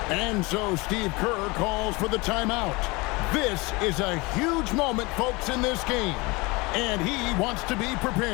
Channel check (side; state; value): right; quieter; 25.0 dB